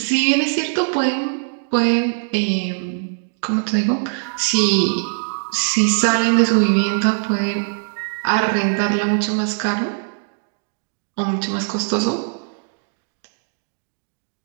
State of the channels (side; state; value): left; silent; digital silence